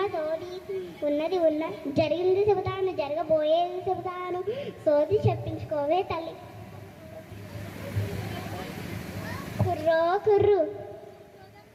సోది ఉన్నది జరిగింది చెబుతాను జరగబోయేది చెబుతాను సోది చెప్పించుకోవే తల్లి. కుర్రో కుర్రు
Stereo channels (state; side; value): identical; both; correlation 1.00